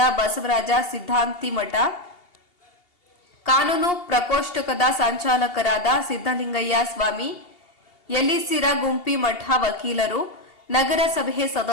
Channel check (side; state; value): right; late; 2.8 ms